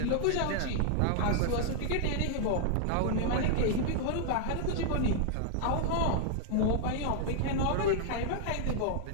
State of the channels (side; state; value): both; different; correlation 0.00